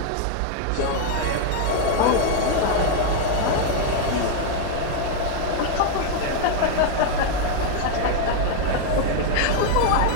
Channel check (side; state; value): both; different; correlation 0.00